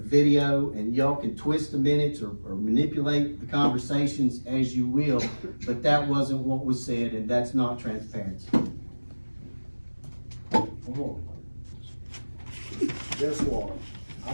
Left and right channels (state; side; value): inverted; both; correlation -1.00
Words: video, and y'all can twist the minutes or manipulate the conversations as you will, but that wasn't what was said, and that's not transparency. Guess what?